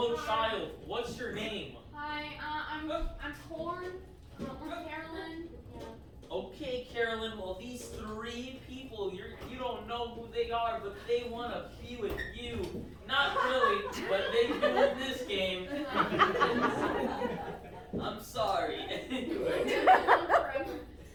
child. What's your name? Hi, I'm Corn. I'm Carolyn. Okay, Carolyn. Well, these three leave people. You don't know who they are, but they want to be with you. Not really, but they do in this game. I'm sorry. Anyway.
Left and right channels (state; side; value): identical; both; correlation 1.00